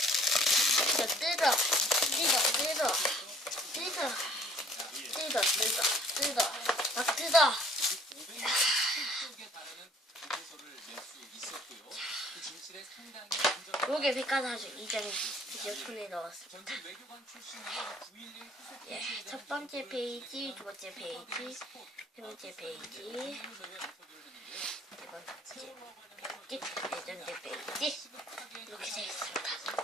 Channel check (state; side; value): normal; both; correlation 0.56